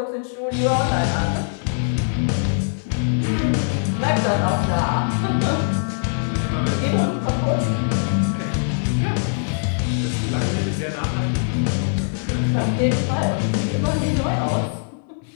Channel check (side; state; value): right; silent; digital silence